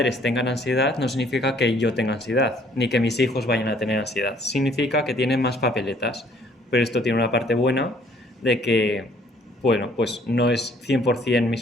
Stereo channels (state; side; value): normal; both; correlation 0.61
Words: tengan ansiedad no significa que yo tenga ansiedad, ni que mis hijos vayan a tener ansiedad. Significa que tienen más papeletas. Pero esto tiene una parte buena de que, bueno, pues no es 100%